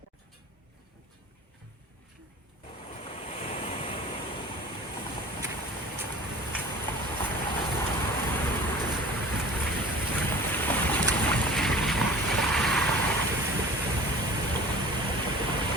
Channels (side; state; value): both; normal; correlation 0.42